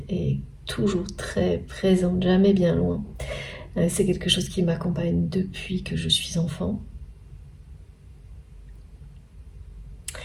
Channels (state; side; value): identical; both; correlation 1.00